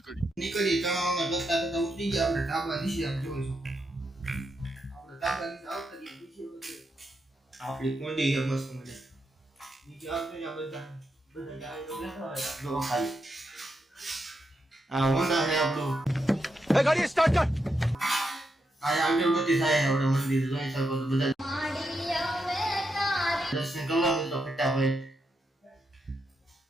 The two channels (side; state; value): both; normal; correlation 0.83